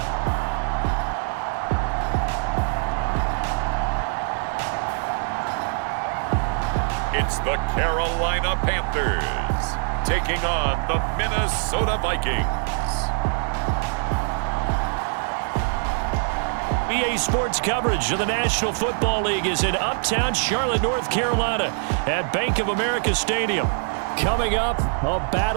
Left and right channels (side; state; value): left; silent; 56 dB below the other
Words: It's the Carolina Panthers taking on the Minnesota Vikings. EA Sports coverage of the National Football League is in uptown Charlotte, North Carolina at Bank of America Stadium. Coming up, a